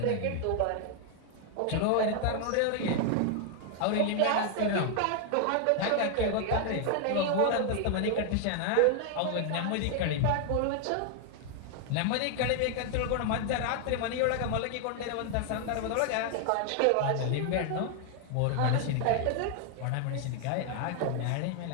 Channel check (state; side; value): different; both; correlation 0.00